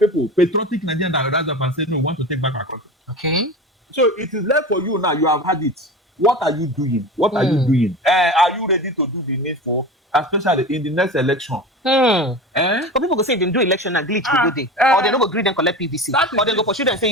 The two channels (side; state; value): both; normal; correlation 0.31